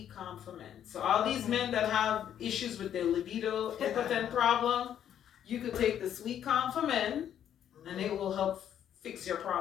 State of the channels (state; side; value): quieter; right; 9.9 dB